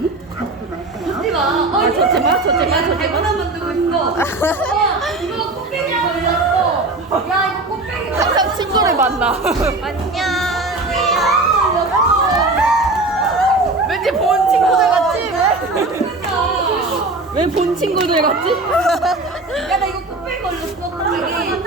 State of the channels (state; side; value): quieter; left; 3.1 dB